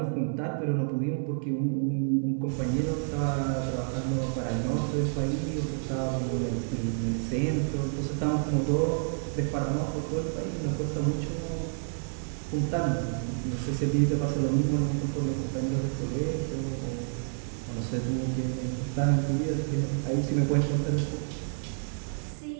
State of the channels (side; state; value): left; silent; digital silence